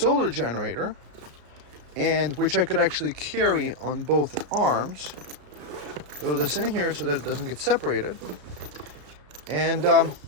generator, and which I could actually carry on both arms. Throw this in here so that it doesn't get separated, and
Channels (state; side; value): late; left; 34 ms